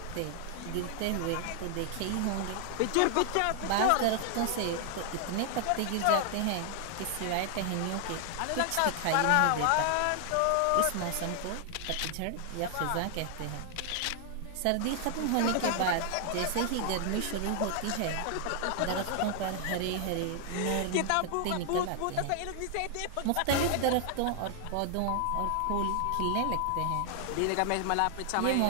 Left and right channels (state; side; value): different; both; correlation 0.00